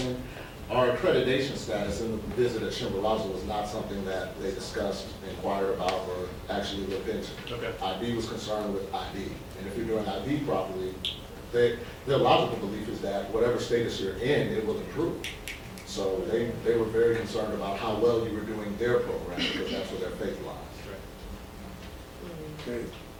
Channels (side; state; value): both; identical; correlation 1.00